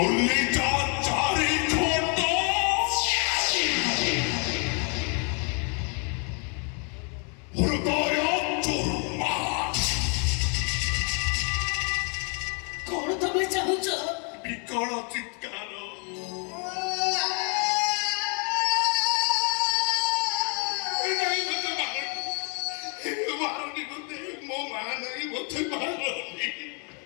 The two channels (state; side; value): quieter; right; 37.4 dB